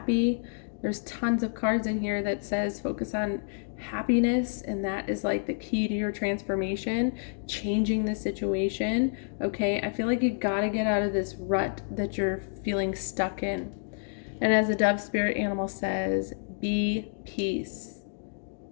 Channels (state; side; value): silent; right; digital silence